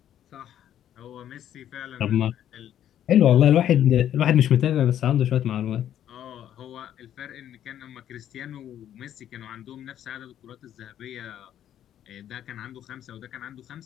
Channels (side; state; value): right; quieter; 10.8 dB